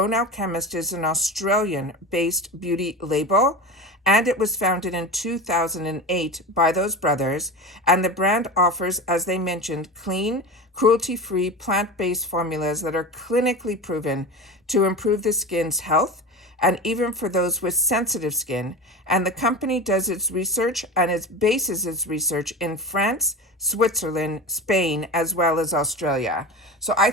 Alchemist is an Australian-based beauty label, and it was founded in 2008 by those brothers, and the brand offers, as they mentioned, clean, cruelty-free, plant-based formulas that are clinically proven to improve the skin's health, and even for those with sensitive skin. And the company does its research and it bases its research in France, Switzerland, Spain, as well as Australia. So I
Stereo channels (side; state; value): both; normal; correlation 0.28